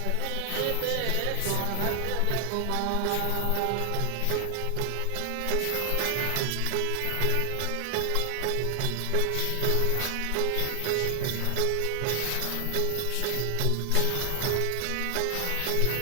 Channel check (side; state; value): both; different; correlation 0.00